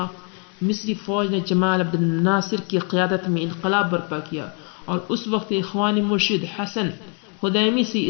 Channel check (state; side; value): quieter; right; 37.9 dB